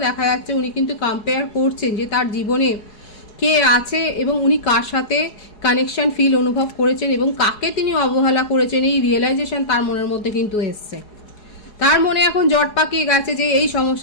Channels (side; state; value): right; late; 4.8 ms